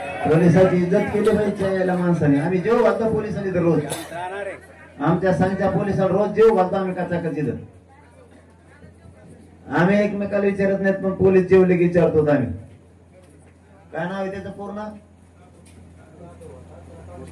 पोलिसांची इज्जत केली पाहिजे याला माणसाने. आम्ही जेव घालतो पोलिसांनी तर रोज. आमच्या संघच्या पोलिसांना रोज जेव घालतो आम्ही कचाकच इथं. आम्ही एकमेकाला विचारत नाहीत पण पोलीस जेवले की विचारतो आम्ही. काय नाव आहे त्याचं पूर्ण?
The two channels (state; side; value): identical; both; correlation 1.00